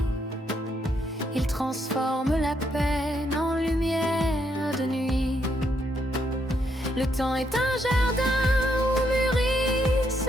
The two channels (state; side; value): normal; both; correlation 0.76